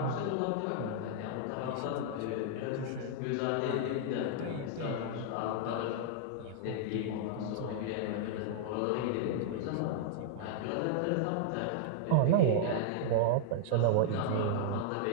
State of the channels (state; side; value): different; both; correlation -0.01